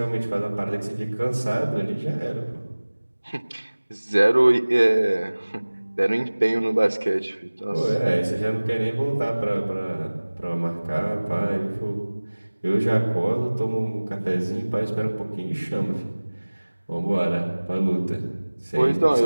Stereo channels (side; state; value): both; inverted; correlation -1.00